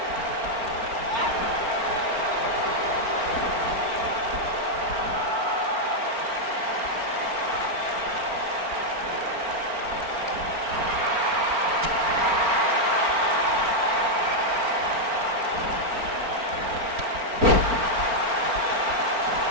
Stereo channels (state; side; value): late; left; 4.4 ms